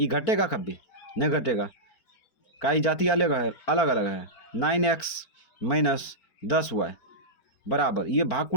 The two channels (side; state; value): right; late; 4.4 ms